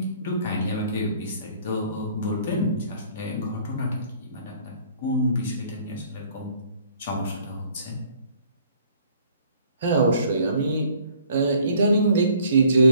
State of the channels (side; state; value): both; inverted; correlation -0.57